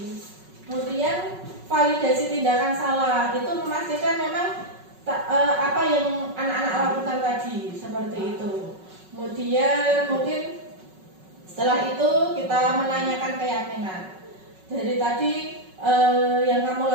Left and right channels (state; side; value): late; left; 5.4 ms